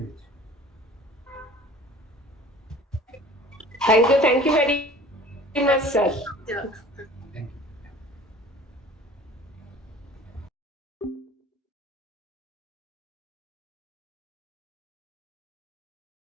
Thank you very much, sir. Yeah.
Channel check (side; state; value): both; normal; correlation 0.46